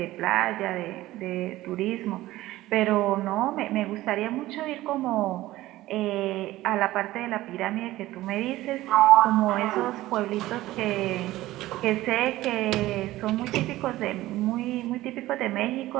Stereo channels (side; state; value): left; quieter; 16.6 dB